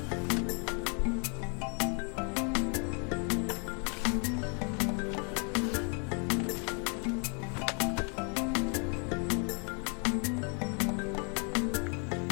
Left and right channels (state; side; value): quieter; right; 38.0 dB